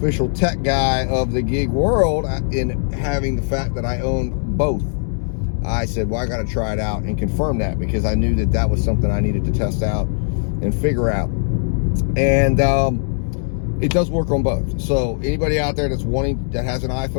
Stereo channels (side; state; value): right; silent; digital silence